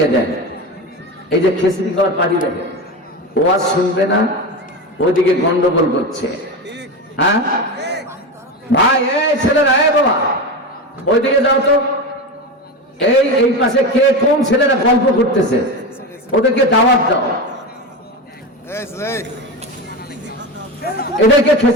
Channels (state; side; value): normal; both; correlation 0.21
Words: দেন। এই যে খিচড়ি খাওয়ার পার্টি দেখে, ওয়াজ শুনবে না, ওইদিকে গন্ডগোল করছে। হ্যাঁ ভাই, এই ছেলেরা, এই বাবা ওইদিকে যাও তো, এই পাশে কে কোন ছেলেরা গল্প করতেছে, ওদেরকে দাওয়াত দাও, এদেরকে